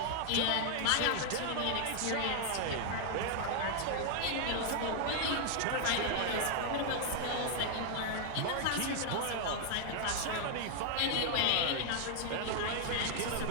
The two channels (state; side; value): different; both; correlation 0.00